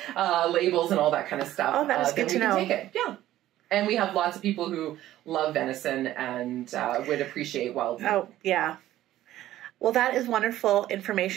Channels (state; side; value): quieter; left; 13.9 dB